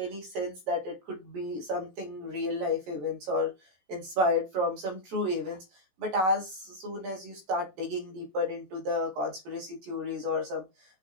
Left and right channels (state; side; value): late; left; 16 ms